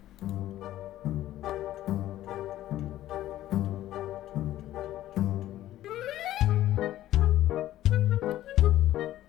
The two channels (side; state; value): right; quieter; 13.8 dB